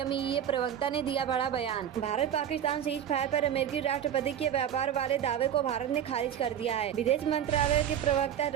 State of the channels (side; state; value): left; quieter; 9.6 dB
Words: प्रवक्ता ने दिया बड़ा बयान। भारत पाकिस्तान सीज फायर पर अमेरिकी राष्ट्रपति के व्यापार वाले दावे को भारत ने खारिज कर दिया है। विदेश मंत्रालय के प्रवक्ता